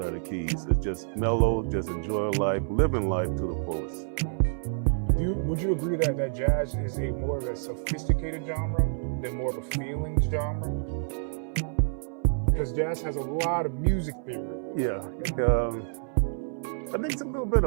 are the keys. It's just mellow, just enjoy life, living life to the fullest. Would you agree that jazz is a more of a sophisticated genre than more of a feelings genre? Because jazz has a lot of music theory. Yeah, I think it's a little bit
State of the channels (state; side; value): silent; left; 59 dB below the other